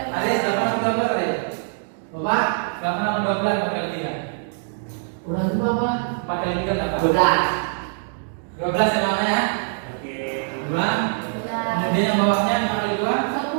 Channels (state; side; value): silent; left; digital silence